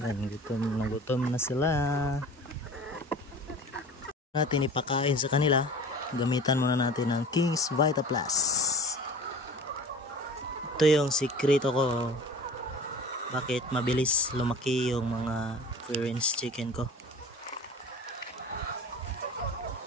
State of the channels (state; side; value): normal; both; correlation 0.40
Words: gutom na sila. Natin ipakain sa kanila. Gamitan muna natin ng King's Vita Plus. Ito yung sikreto ko bakit mabilis lumaki yung mga free range chicken ko.